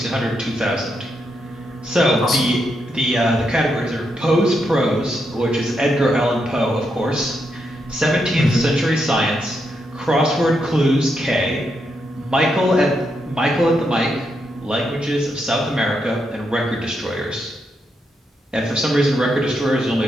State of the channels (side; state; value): both; normal; correlation 0.81